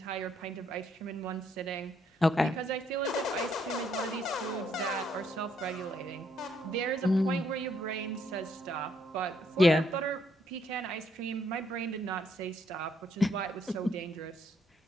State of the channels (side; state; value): both; normal; correlation 0.71